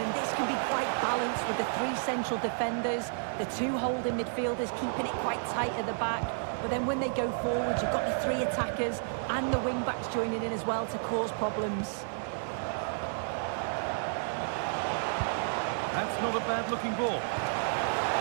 this can be quite balanced with the three central defenders, the two holding midfielders keeping it quite tight at the back. But then when they go forward, you've got the three attackers and the wing-backs joining in as well to cause problems. That's not a bad-looking ball.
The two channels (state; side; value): silent; left; digital silence